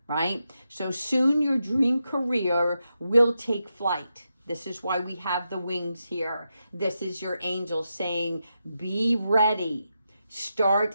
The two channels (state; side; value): inverted; both; correlation -0.86